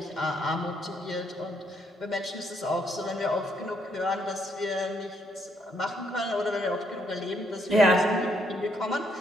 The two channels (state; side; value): normal; both; correlation 0.72